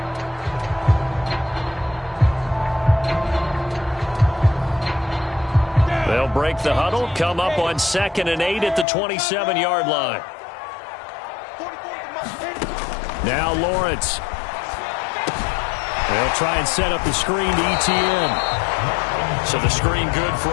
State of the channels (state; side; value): drops out; right; at 8.8 s